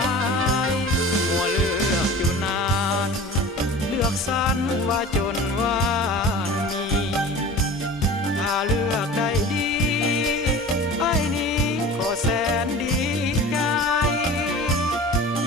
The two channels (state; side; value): normal; both; correlation 0.38